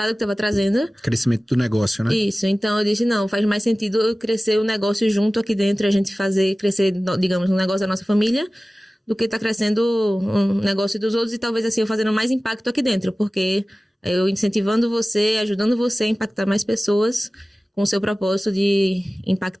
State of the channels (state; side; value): normal; both; correlation 0.97